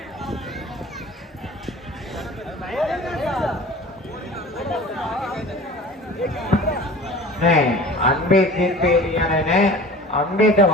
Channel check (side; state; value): both; normal; correlation 0.41